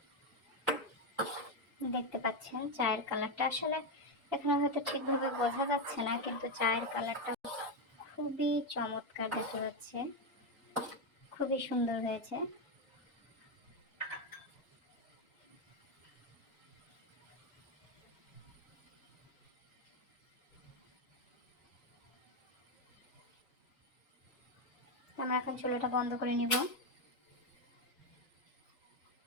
দেখতে পাচ্ছেন চায়ের কালারটা আসলে এখানে হয়তো ঠিকভাবে বোঝা যাচ্ছে না, কিন্তু চায়ের কালারটা খুবই চমৎকার দেখা যাচ্ছে, খুবই সুন্দর হয়েছে। আমরা এখন চুলাটা বন্ধ করে নিব।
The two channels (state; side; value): normal; both; correlation 0.07